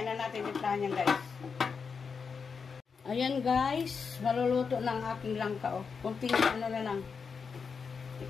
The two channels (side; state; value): right; quieter; 5.6 dB